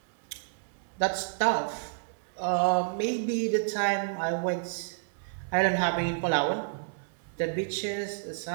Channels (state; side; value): silent; left; digital silence